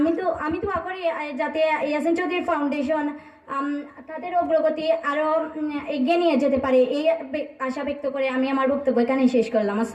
দোয়া করি যাতে ইয়াসিন চৌধুরী ফাউন্ডেশন তাদের অগ্রগতি আরো এগিয়ে নিয়ে যেতে পারে, এই আশা ব্যক্ত করে আমি আমার বক্তব্য এখানে শেষ করলাম।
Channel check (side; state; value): both; identical; correlation 1.00